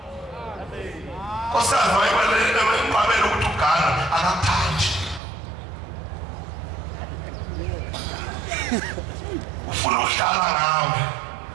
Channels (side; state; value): left; drops out; at 5.2 s